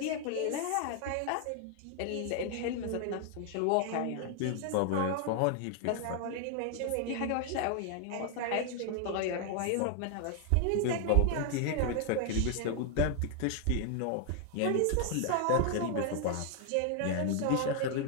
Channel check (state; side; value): different; both; correlation 0.00